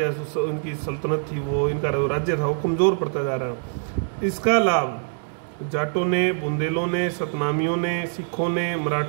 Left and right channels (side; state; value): left; silent; digital silence